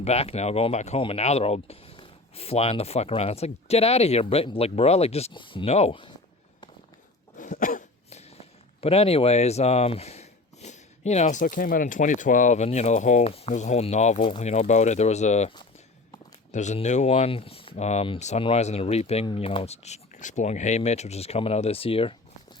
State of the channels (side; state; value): right; quieter; 3.2 dB